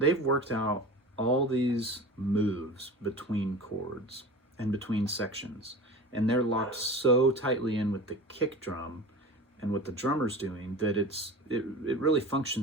worked out all these moves between chords and between sections, and they're locked so tightly in with the kick drum and what the drummer's doing that it really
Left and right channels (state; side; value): normal; both; correlation 0.34